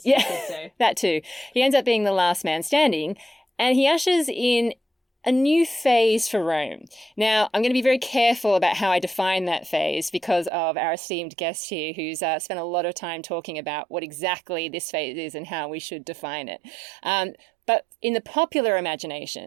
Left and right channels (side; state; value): left; drops out; at 10.5 s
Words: you could say. That too. He ends up being the last man standing, and he ushers in a new phase for Rome. Now, I'm going to be very careful about how I define that phase because of our esteemed guest here who's spent a lot of time talking about what exactly this phase is and how we should define it. But in the popular